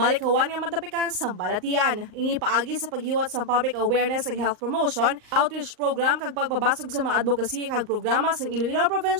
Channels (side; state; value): left; late; 38 ms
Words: nga matapikan sang balatian. Ini paagi sa paghiwat sang public awareness ag health promotion, outreach program kag pagpabasog sa mga advocacy kag programa sang Iloilo